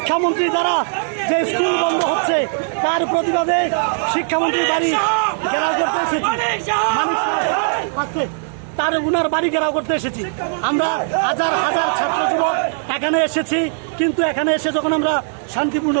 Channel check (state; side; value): silent; left; digital silence